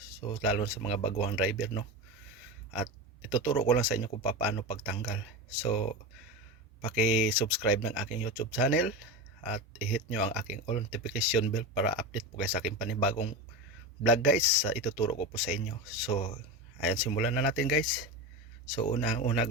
lalo na sa mga baguhang driver, no. At ituturo ko lang sa inyo kung paano pagtanggal. So paki-subscribe ng aking YouTube channel at i-hit nyo ang aking all notification bell para update po kayo sa aking panibagong vlog guys, sa ituturo ko po sa inyo. So ayan, simulan na natin guys. So una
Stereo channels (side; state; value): both; normal; correlation 0.21